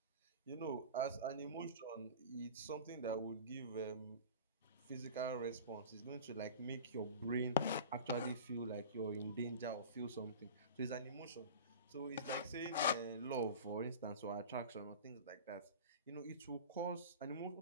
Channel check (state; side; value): inverted; both; correlation -0.35